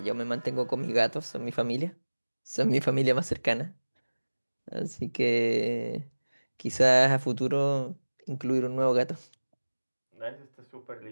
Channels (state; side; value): inverted; both; correlation -1.00